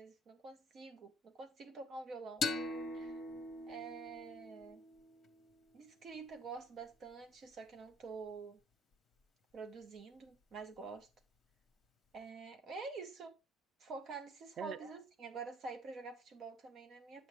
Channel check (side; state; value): both; normal; correlation 0.58